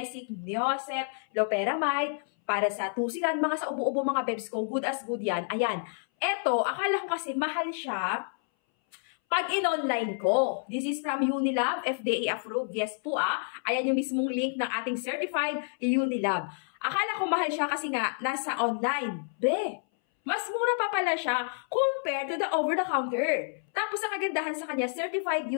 Neosef, Loperamide, para sa tusilan, mga sa ubo-ubo mga bebs ko, good as good yan. Ayan. Eto, akala ko kasi mahal siya pag in-online ko. This is from Unilab, FDA approved. Yes po Ayan yung mismong link ng ating certified Unilab. Akala ko mahal siya kasi nga nasa online. Mas mura pa pala siya compared to the over-the-counter. Tapos ang kagandahan sa kanya, certified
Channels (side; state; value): right; silent; 58 dB below the other